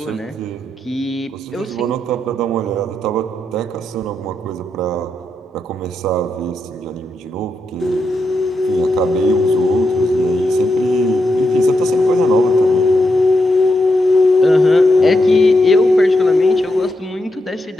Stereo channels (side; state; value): both; normal; correlation 0.84